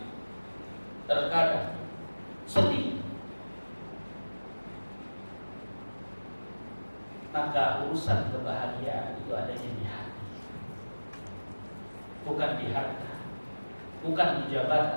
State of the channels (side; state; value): both; inverted; correlation -1.00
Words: terkadang sedih. Maka urusan kebahagiaan itu adanya di hati, bukan di harta, bukan di